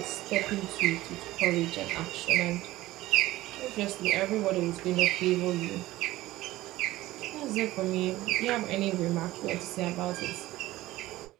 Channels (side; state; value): left; quieter; 17.0 dB